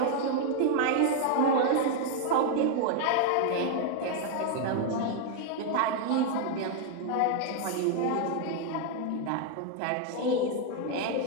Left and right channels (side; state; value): both; different; correlation 0.00